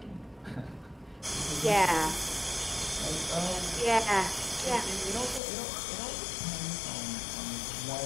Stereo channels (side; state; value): right; drops out; at 5.4 s